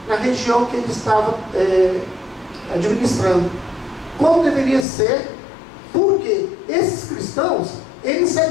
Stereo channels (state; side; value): drops out; right; at 4.9 s